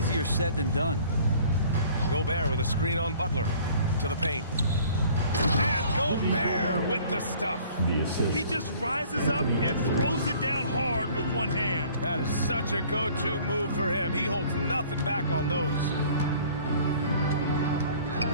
said than done. Gobert with a screen on Butler to the paint. And Gobert with the stuff. He just rises up and throws it down hard with one hand. That is such a go-to move for him. He holds nothing back on those.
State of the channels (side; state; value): both; inverted; correlation -0.52